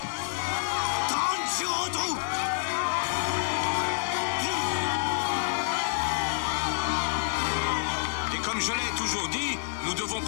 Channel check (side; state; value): right; silent; 59 dB below the other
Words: 30 jours au trou. Et comme je l'ai toujours dit, nous devons